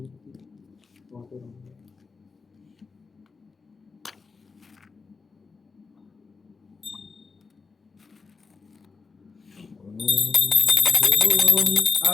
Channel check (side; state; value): right; quieter; 4.6 dB